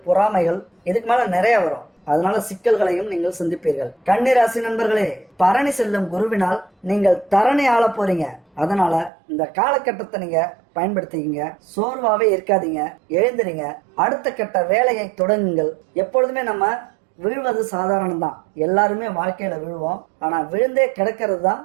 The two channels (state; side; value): drops out; left; at 9.1 s